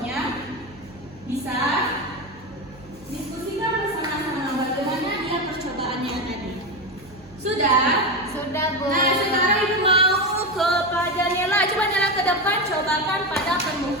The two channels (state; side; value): noise; right; hum, 23 dB below the sound